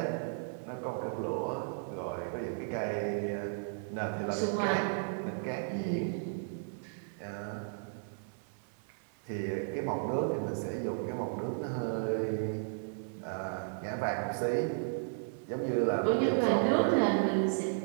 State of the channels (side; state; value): left; silent; 55 dB below the other